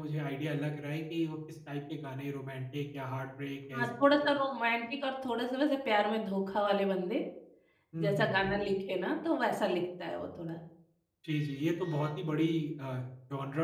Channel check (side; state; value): both; identical; correlation 1.00